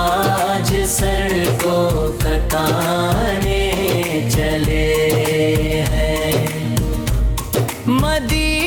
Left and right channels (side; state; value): both; identical; correlation 1.00